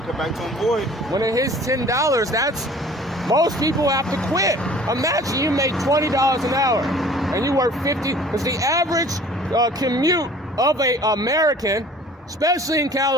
come back to him void. When it hits $10, that's most people have to quit. Imagine you make $20 an hour and you work 50. Because the average commute of a American, especially in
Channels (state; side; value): normal; both; correlation 0.49